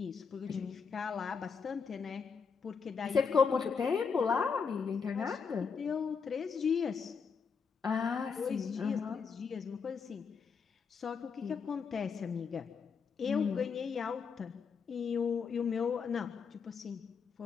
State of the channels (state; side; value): quieter; right; 5.8 dB